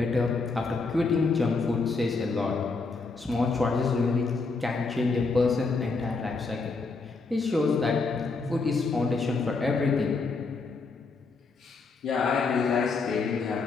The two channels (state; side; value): quieter; right; 4.1 dB